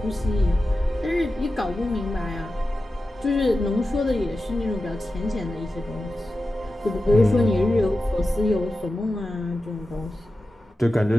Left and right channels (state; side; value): normal; both; correlation 0.93